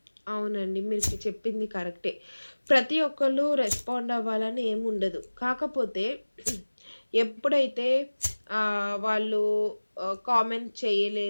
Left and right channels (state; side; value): inverted; both; correlation -1.00